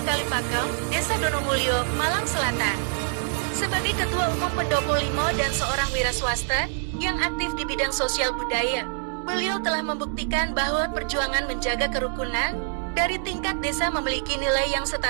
Kalipakem, Desa Donomulyo, Malang Selatan. Sebagai Ketua Umum Pendopo Limo dan seorang wira swasta yang aktif di bidang sosial budaya, beliau telah membuktikan bahwa perjuangan menjaga kerukunan dari tingkat desa memiliki nilai yang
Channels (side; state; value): left; silent; 61 dB below the other